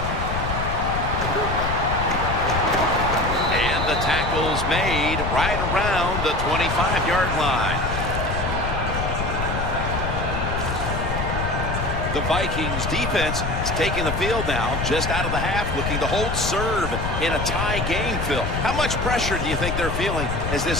And the tackle's made right around the 25-yard line. The Vikings defense is taking the field now, just out of the half, looking to hold serve in a tie game, Phil. How much pressure do you think they're feeling as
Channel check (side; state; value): left; noise; rumble, 3 dB below the sound